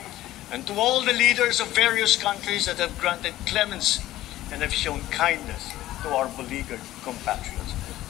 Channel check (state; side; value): quieter; right; 15.0 dB